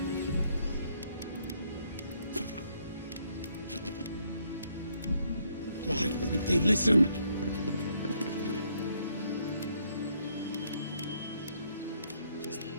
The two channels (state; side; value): inverted; both; correlation -0.71